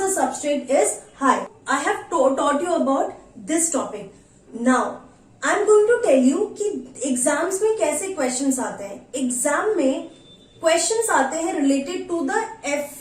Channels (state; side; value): identical; both; correlation 1.00